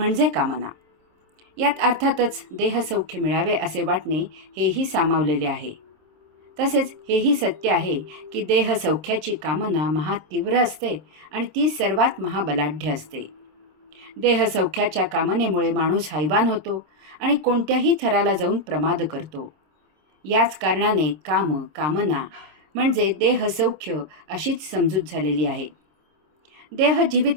कामना. यात अर्थातच देहसौख्य मिळावे असे वाटणे हेही सामावलेले आहे. तसेच हेही सत्य आहे की देहसौख्याची कामना महातीव्र असते आणि ती सर्वात महाबलाढ्य असते. देहसौख्याच्या कामनेमुळे माणूस हैवान होतो आणि कोणत्याही थराला जाऊन प्रमाद करतो. याच कारणाने काम, कामना म्हणजे देहसौख्य अशीच समजूत झालेली आहे. देह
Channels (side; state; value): left; late; 26 ms